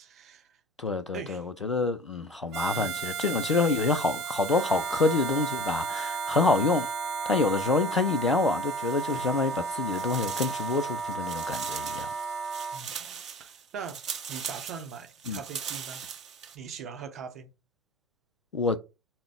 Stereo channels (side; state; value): both; normal; correlation 0.41